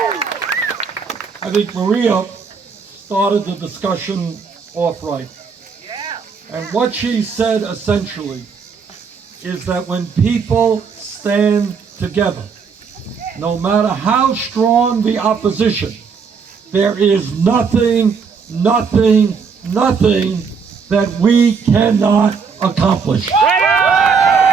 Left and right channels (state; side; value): quieter; left; 5.7 dB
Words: I think Maria started the discussion off right. And what she said essentially is that when people stand together, no matter how strong the opposition, there is nothing nothing that we cannot accomplish. Right